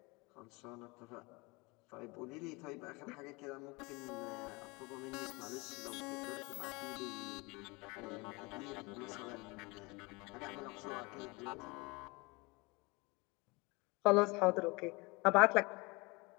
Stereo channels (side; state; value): right; quieter; 26.0 dB